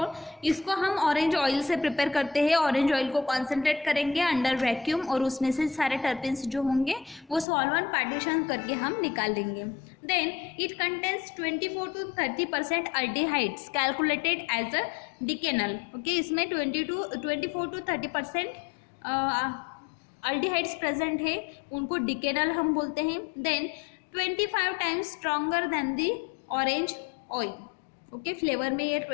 इसको हम ऑरेंज ऑयल से प्रिपेयर करते हैं, ऑरेंज ऑयल को कॉन्सेंट्रेट करेंगे अंडर वैक्यूम और उसमें से सारे टर्पिन्स जो होंगे वो सॉल्वेंट पार्टीशन करके हम निकाल लेंगे। Then it contains 24 to 30% aldehydes calculated as a decanal, okay. इसमें 24 to 30% अल्डिहाइड्स प्रेजेंट है, उनको डिकेनल हम बोलते हैं। Then 25 times stronger than the orange oil, okay. Flavour में ये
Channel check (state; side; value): drops out; right; at 7.5 s